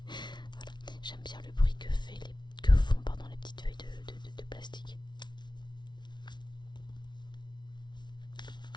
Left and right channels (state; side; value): late; right; 0.21 ms